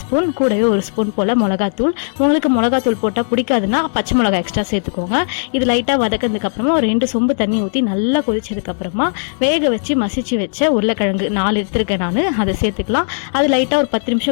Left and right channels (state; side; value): silent; right; 68 dB below the other